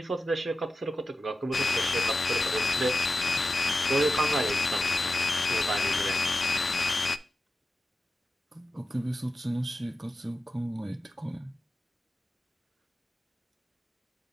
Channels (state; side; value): normal; both; correlation 0.91